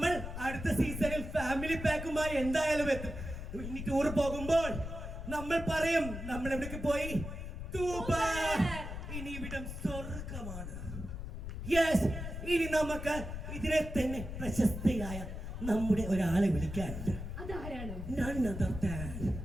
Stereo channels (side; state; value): left; noise; rumble, 7 dB below the sound